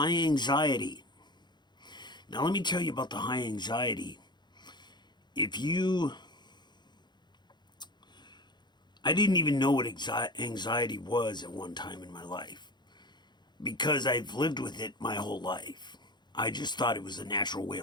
anxiety. Now, let me tell you about the high anxiety. I didn't even know what anxiety was at one time in my life because I've lived with it my whole life. I just thought it was a natural way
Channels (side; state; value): right; late; 0.21 ms